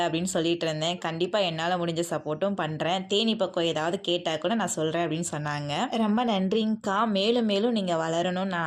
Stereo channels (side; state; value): both; identical; correlation 1.00